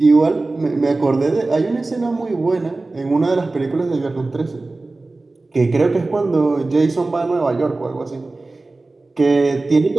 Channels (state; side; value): quieter; left; 3.3 dB